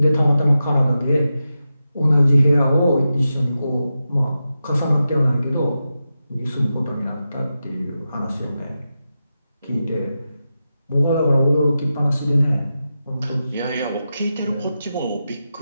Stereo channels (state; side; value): inverted; both; correlation -0.90